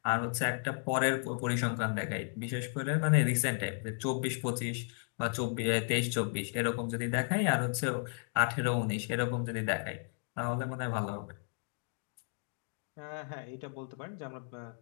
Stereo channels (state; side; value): silent; right; 55 dB below the other